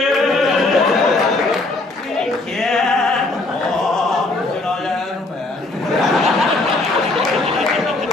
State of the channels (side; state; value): right; quieter; 3.0 dB